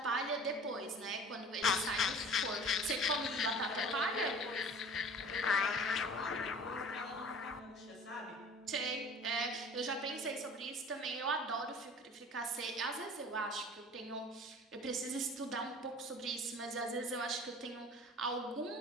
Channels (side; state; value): both; normal; correlation 0.44